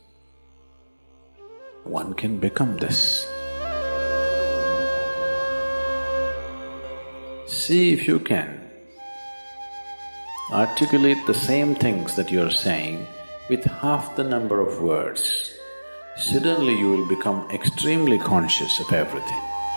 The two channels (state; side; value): inverted; both; correlation -1.00